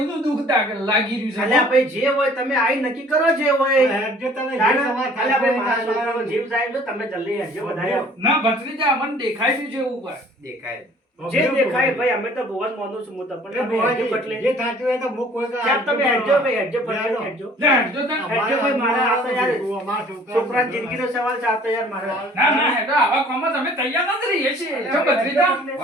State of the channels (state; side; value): normal; both; correlation 0.53